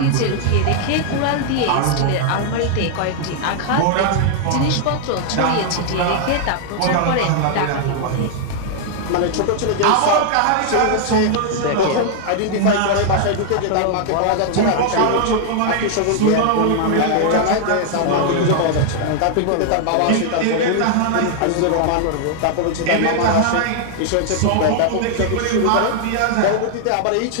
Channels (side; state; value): both; different; correlation 0.00